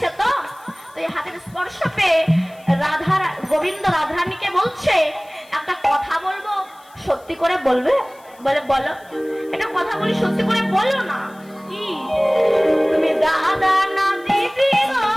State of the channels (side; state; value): left; noise; hiss, 28 dB below the sound